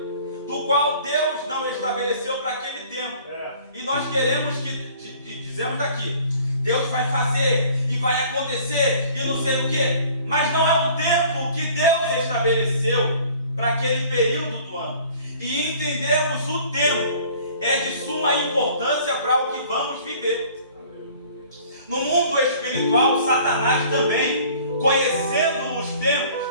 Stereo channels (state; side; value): inverted; both; correlation -0.51